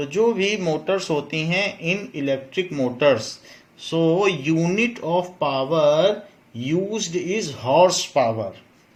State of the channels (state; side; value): identical; both; correlation 1.00